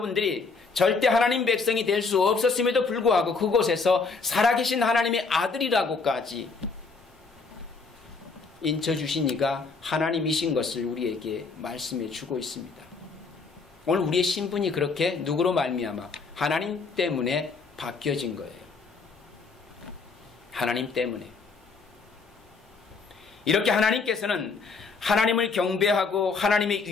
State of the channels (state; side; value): quieter; right; 4.5 dB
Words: 절대 하나님 백성이 될 수 없었음에도 불구하고 그곳에서 살아계신 하나님의 아들이라고까지 인쳐주신 이가 하나님이신 것을 우리에게 말씀해 주고 있습니다. 오늘 우리의 신분이 그렇게 누구로 말미암아 하나님 때문에 바뀌어진 거예요. 하나님 때문에. 이렇게 하나님께서는 하나님을 경배하고 하나님의